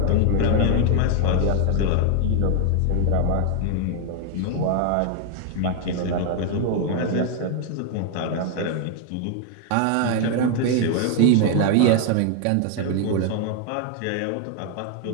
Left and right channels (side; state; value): both; different; correlation 0.00